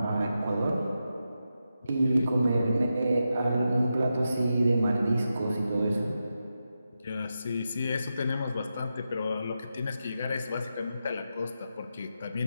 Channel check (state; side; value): inverted; both; correlation -0.89